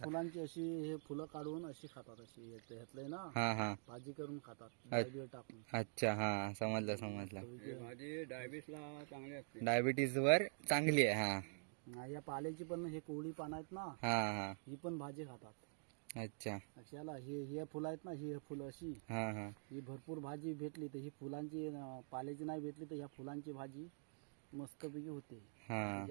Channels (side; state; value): left; silent; digital silence